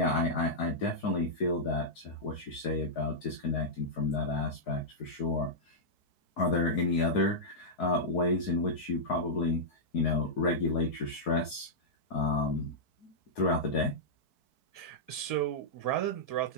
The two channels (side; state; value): right; late; 4.6 ms